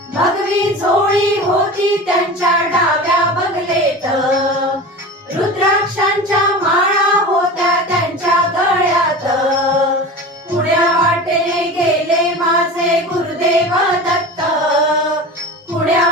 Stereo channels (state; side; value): normal; both; correlation 0.32